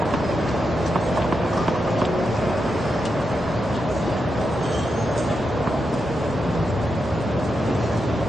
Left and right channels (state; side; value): normal; both; correlation 0.86